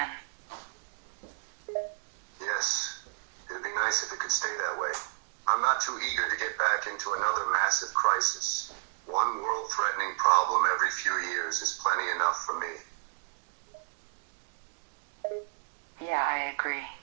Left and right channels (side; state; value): left; silent; digital silence